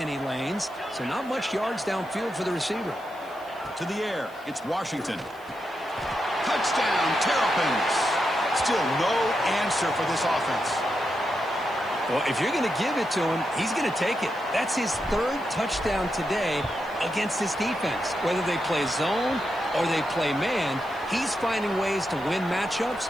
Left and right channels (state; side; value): noise; right; hiss, 27 dB below the sound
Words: lanes, so not much yards downfield for the receiver. To the air, it's Washington. Touchdown, Terrapins. Still no answer for this offense. Well, if you're going to give it to him, he's going to take it. That's his third touchdown today against this defense. Whether they play zone or they play man, he's finding ways to win